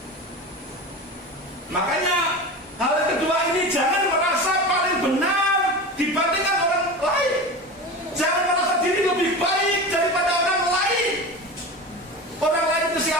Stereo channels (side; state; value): both; normal; correlation 0.29